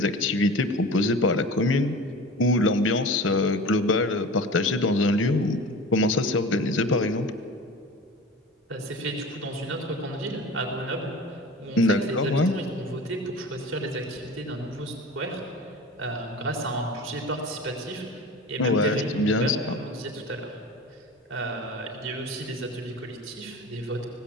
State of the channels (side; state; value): both; normal; correlation 0.36